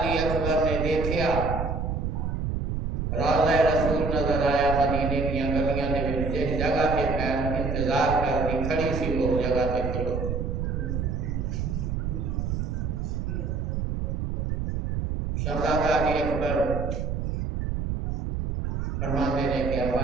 अकबर ने देखा रौज़ा रसूल नजर आया। मदीने की गलियां ने जिस जगह पे फैल इंतजार कर दी खड़ी सी वो जगह पे खड़ो। शहजादा अली अकबर फरमाते ने कि अब्बा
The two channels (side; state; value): right; noise; rumble, 1 dB below the sound